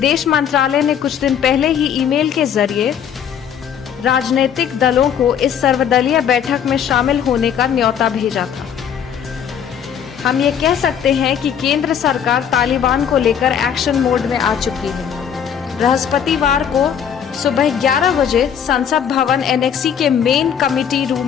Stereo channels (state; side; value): quieter; right; 8.4 dB